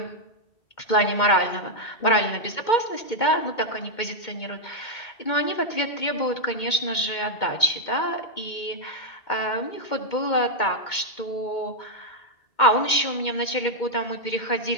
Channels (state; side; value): late; right; 2.2 ms